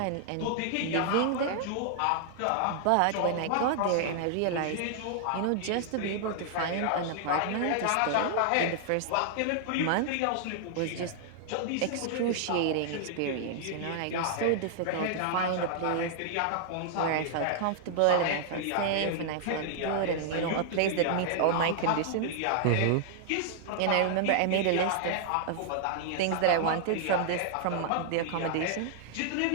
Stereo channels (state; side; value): different; both; correlation -0.01